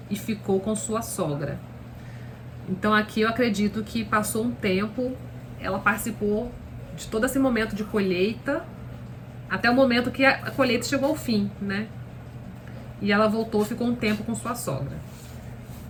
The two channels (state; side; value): identical; both; correlation 1.00